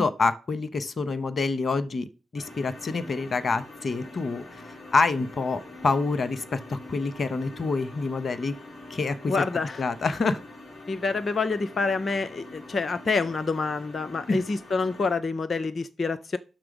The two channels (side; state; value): right; quieter; 3.5 dB